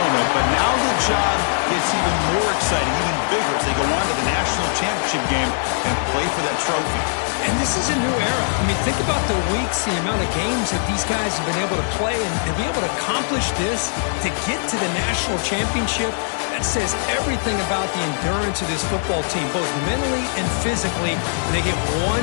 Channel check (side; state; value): right; silent; digital silence